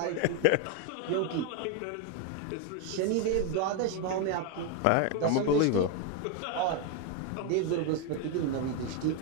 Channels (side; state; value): both; different; correlation 0.02